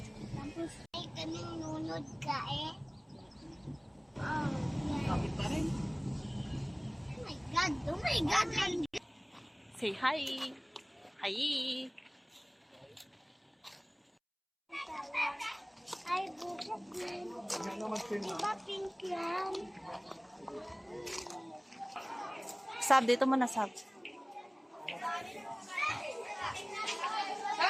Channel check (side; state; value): both; identical; correlation 1.00